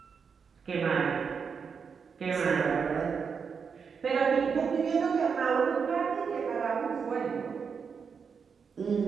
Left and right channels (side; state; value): left; quieter; 6.0 dB